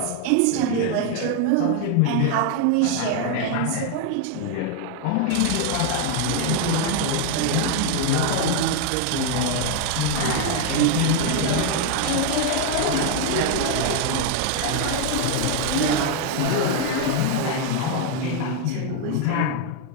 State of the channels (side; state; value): both; different; correlation 0.01